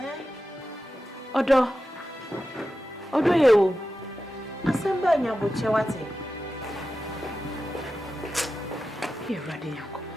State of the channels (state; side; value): normal; both; correlation 0.92